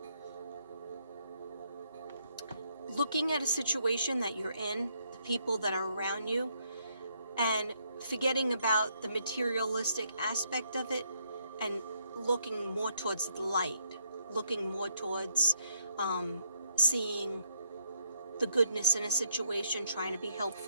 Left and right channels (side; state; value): both; inverted; correlation -0.72